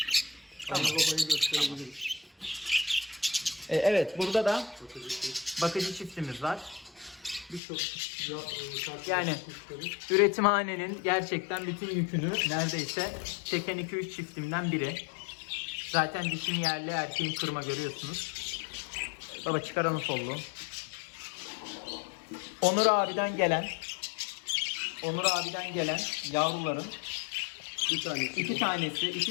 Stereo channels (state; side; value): drops out; right; at 7.6 s